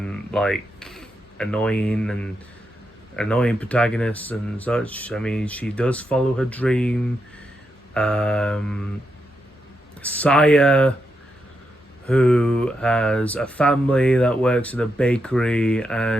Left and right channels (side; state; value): both; normal; correlation 0.84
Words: like annoying protagonist and such, I mean, she does follow her dream. Saya, who has a family that works at a bakery,